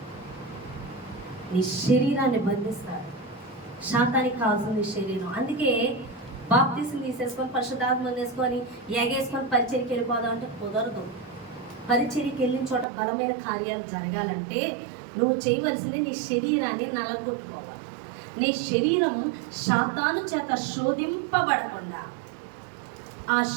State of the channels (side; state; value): left; drops out; at 12.9 s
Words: నీ శరీరాన్ని బంధిస్తాడు. శాతానికి కావాల్సింది శరీరం. అందుకే బాప్తిసం తీసేసుకొని పరిశుద్ధాత్మ వేసుకొని ఎగేసుకొని పరిచర్యకి వెళ్ళిపోదాం అంటే కుదరదు. పరిచర్యకి వెళ్ళిన చోట బలమైన కార్యాలు జరగాలంటే నువ్వు చేయవలసింది నీ శరీరాన్ని నలగొట్టుకోవాలి. నీ శరీరం శాతాను చేత శోధింపబడకుండా ఆ